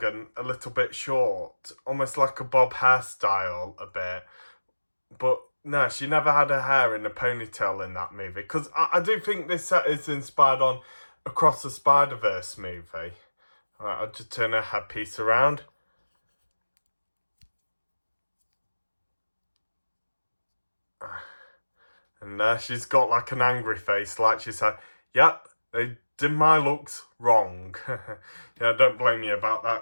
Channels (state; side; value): inverted; both; correlation -1.00